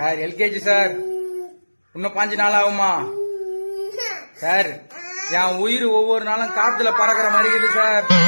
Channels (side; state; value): both; inverted; correlation -1.00